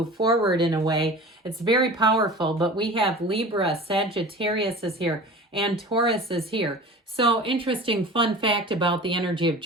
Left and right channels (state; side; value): normal; both; correlation 0.38